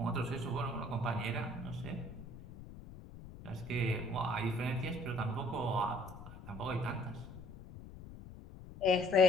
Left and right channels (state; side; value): noise; left; rumble, 15 dB below the sound